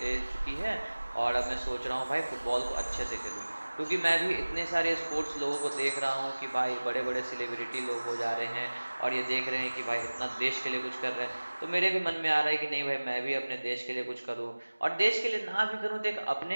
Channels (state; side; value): inverted; both; correlation -1.00